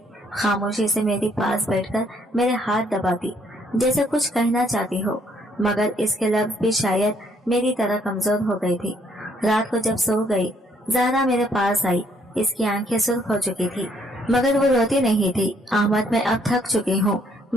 खामोशी से मेरे पास बैठकर मेरे हाथ दबाती जैसे कुछ कहना चाहती हो, मगर इसके लफ्ज़ भी शायद मेरी तरह कमजोर हो गई थी। रात को जब सो गई ज़हरा मेरे पास आई। इसकी आंखें सुर्ख हो चुकी थी मगर वो रोती नहीं थी। अहमद, मैं अब थक चुकी हूँ।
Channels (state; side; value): normal; both; correlation 0.67